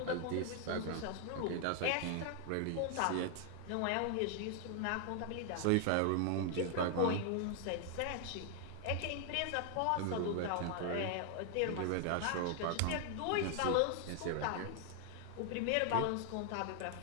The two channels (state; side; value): different; both; correlation 0.00